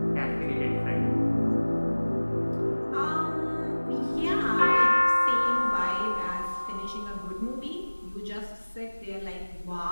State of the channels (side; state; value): both; inverted; correlation -1.00